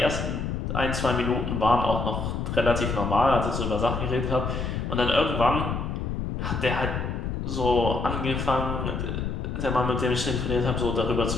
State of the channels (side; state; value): left; noise; rumble, 3 dB below the sound